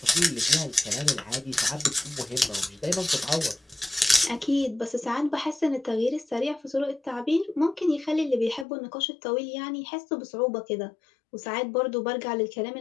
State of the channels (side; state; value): right; drops out; at 8.7 s